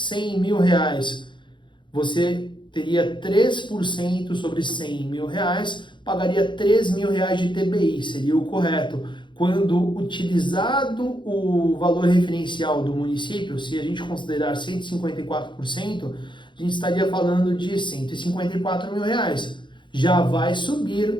mil reais, você teria 3% sobre 100 mil reais, pagaria 3 mil reais de TBI, seria o correto. Quando utilizado o valor referencial do município, se a gente considerar 154%, a gente estaria falando de 154 mil reais. Já vai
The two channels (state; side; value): late; right; 0.23 ms